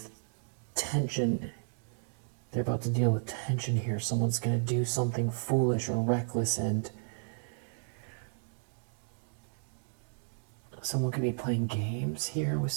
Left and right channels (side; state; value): left; silent; digital silence